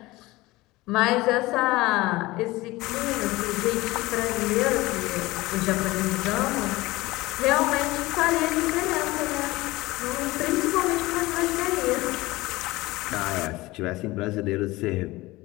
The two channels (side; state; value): right; quieter; 19.9 dB